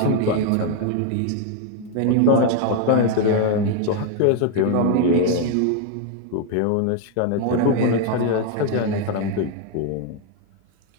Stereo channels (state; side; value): different; both; correlation 0.01